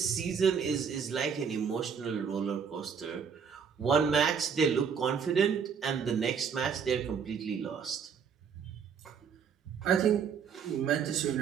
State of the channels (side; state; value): left; quieter; 6.7 dB